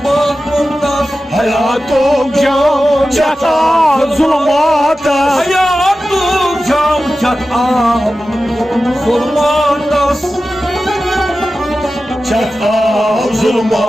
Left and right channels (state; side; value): normal; both; correlation 0.94